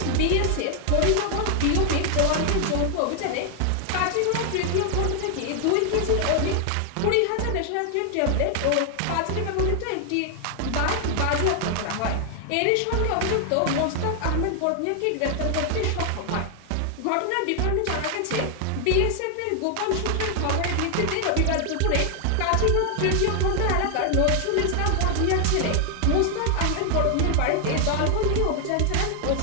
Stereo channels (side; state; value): both; different; correlation 0.00